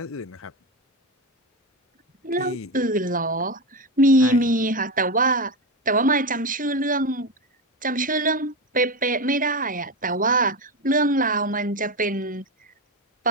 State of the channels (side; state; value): both; normal; correlation 0.15